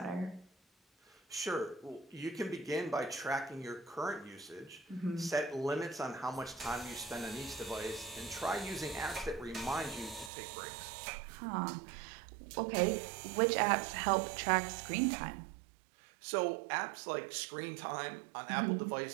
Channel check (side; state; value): left; drops out; at 10.3 s